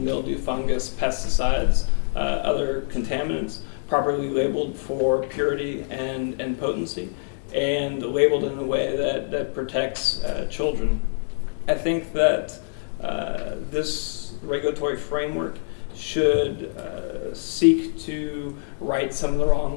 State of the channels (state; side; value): silent; right; digital silence